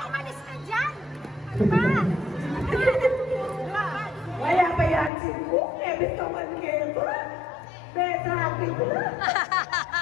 Umalis ka dyan! Diba? Wala pa yan si Cook, ebit ka man kayo. Betrapin ko na.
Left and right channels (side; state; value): right; drops out; at 5.1 s